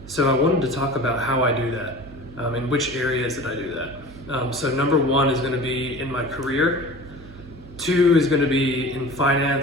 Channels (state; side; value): noise; right; hum, 18 dB below the sound